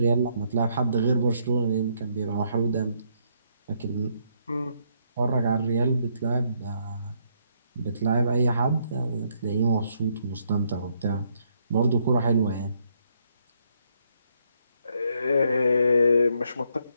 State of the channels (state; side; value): inverted; both; correlation -0.73